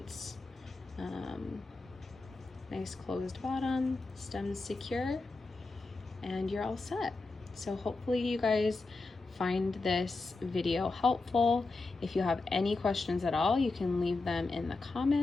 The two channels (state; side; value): quieter; right; 3.5 dB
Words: nice closed bottom, stems secure, and you're all set. So hopefully you guys find this video helpful. If you have any questions at all, you can leave them in the